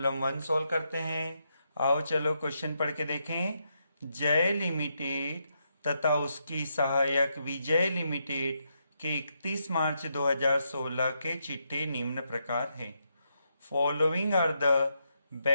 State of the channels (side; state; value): both; inverted; correlation -0.81